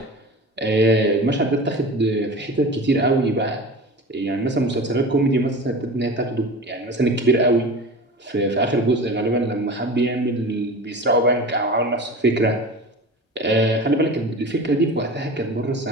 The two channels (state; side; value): normal; both; correlation 0.34